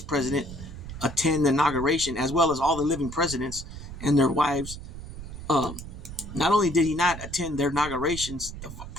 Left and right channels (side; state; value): right; noise; rumble, 11 dB below the sound